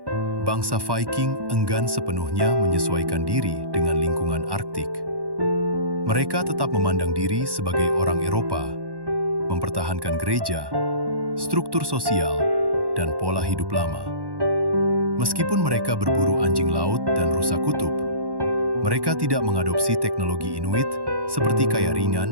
bangsa Viking enggan sepenuhnya menyesuaikan diri dengan lingkungan Arktik. Mereka tetap memandang diri sebagai orang Eropa, mempertahankan gereja, struktur sosial, dan pola hidup lama. Meskipun mereka berburu anjing laut dan rusa kutub, mereka tidak mengadopsi teknologi Inuit seperti kaya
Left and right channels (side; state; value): left; late; 1.1 ms